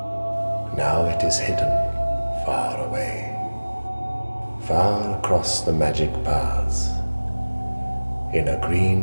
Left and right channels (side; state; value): both; inverted; correlation -1.00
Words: Now it is hidden far away, far across the magic paths, in a